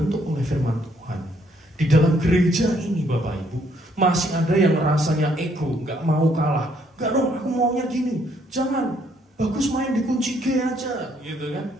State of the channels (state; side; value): normal; both; correlation 0.68